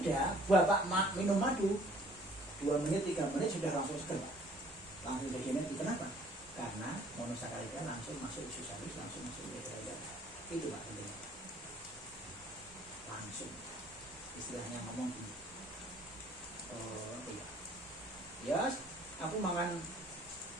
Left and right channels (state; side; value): normal; both; correlation 0.56